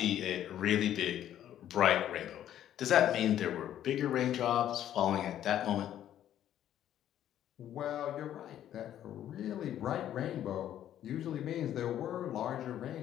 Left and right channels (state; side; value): quieter; right; 11.3 dB